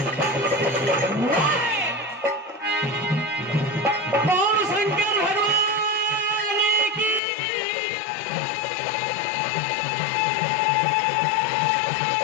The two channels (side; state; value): right; drops out; at 7.2 s